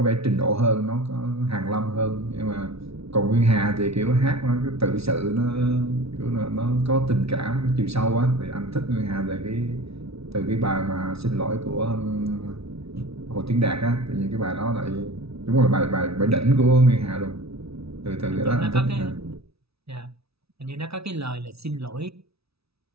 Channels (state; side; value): late; left; 0.77 ms